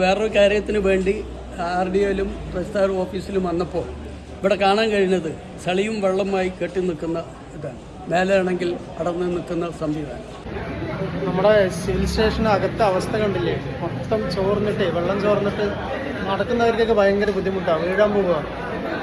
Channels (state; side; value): identical; both; correlation 1.00